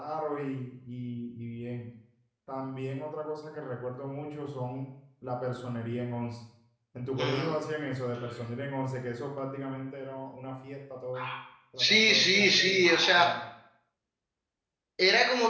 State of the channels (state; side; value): identical; both; correlation 1.00